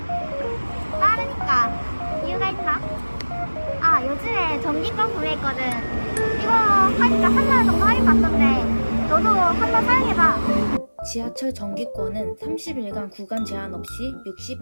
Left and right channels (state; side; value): inverted; both; correlation -1.00